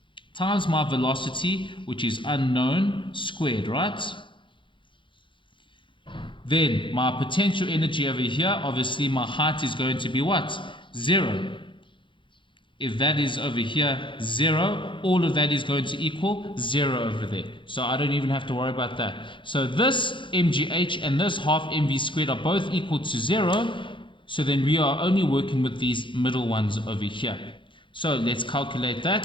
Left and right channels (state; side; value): late; right; 0.24 ms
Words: times my velocity, which is unknown, squared, right? Then my potential energy over here, obviously my height is going to be what? 0. If that is over here 0, all of that is going to equal 0 over there. So I don't even have to worry about that. So this mgh and this half mv squared are both equal to 0. So then we are only working with these middle ones over here. So let's calculate